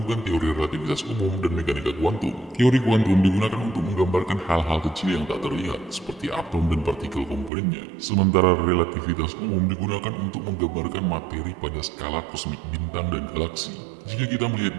teori relativitas umum dan mekanika kuantum. Teori kuantum digunakan untuk menggambarkan hal-hal kecil yang tak terlihat, seperti atom dan partikel komponennya. Sementara relativitas umum digunakan untuk menggambarkan materi pada skala kosmik bintang dan galaksi. Jika kita melihat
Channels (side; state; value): left; drops out; at 7.5 s